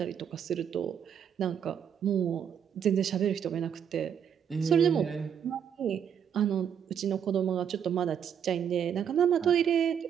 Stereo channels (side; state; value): left; quieter; 8.3 dB